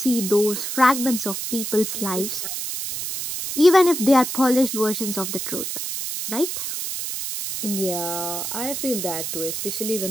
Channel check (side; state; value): right; noise; hiss, 4 dB below the sound